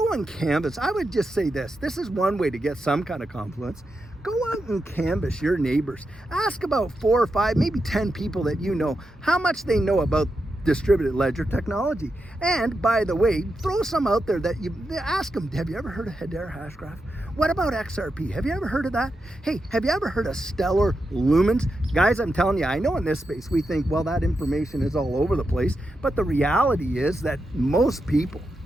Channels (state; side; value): normal; both; correlation 0.87